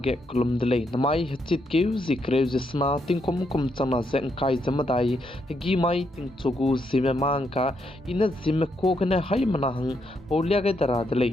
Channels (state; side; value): normal; both; correlation 0.78